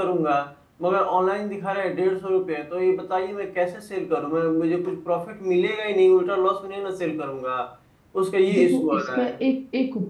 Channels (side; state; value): both; identical; correlation 1.00